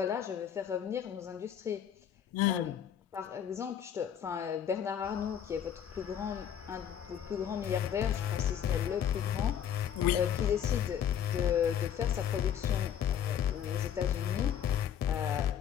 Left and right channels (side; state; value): right; quieter; 9.1 dB